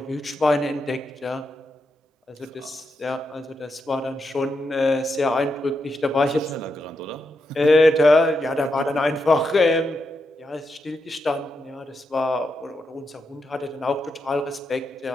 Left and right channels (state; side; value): normal; both; correlation 0.84